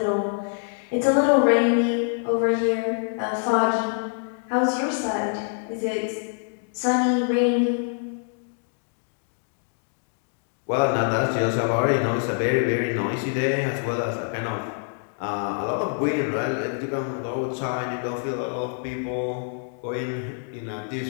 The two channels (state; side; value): silent; right; 61 dB below the other